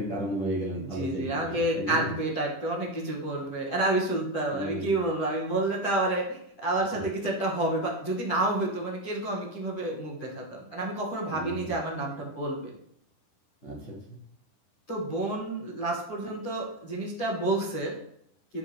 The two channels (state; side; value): late; right; 10 ms